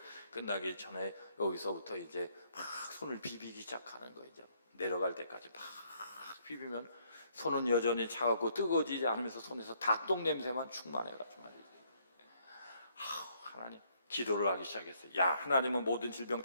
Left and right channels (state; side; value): inverted; both; correlation -0.68